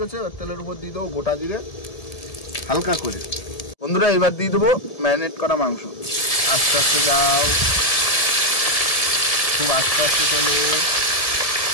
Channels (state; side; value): late; right; 1.7 ms